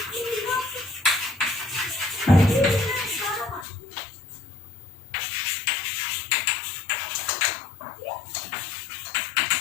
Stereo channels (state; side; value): drops out; right; at 3.7 s